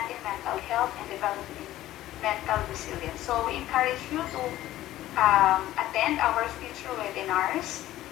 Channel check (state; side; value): quieter; right; 14.6 dB